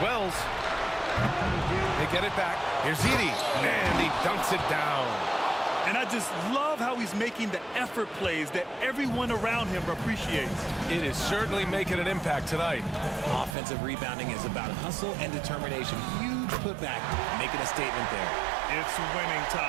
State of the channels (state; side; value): drops out; left; at 13.6 s